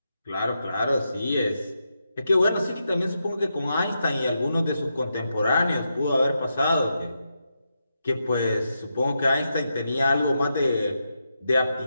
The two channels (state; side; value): inverted; both; correlation -0.85